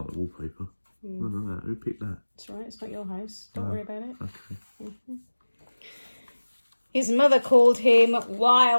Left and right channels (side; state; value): both; inverted; correlation -1.00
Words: the wallpaper. Look at that. Who picked that? It's all right. It's not your house. Don't worry about it. Okay. His mother called him